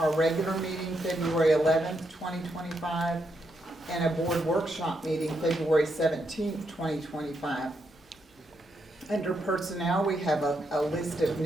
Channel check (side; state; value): both; normal; correlation 0.80